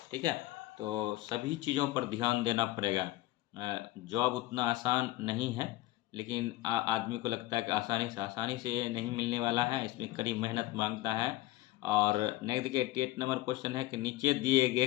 ठीक है। तो सभी चीज़ों पर ध्यान देना पड़ेगा। जॉब उतना आसान नहीं है, लेकिन आदमी को लगता है कि आसानी से नहीं मिलने वाला है, इसमें कड़ी मेहनत मांगता है। और नेक्स्ट देखिए 88 नंबर क्वेश्चन है कि नीचे दिए गए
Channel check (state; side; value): quieter; right; 17.1 dB